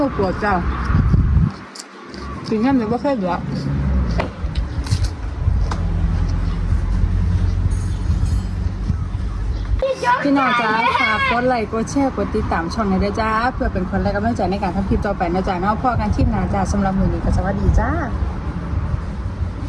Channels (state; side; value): identical; both; correlation 1.00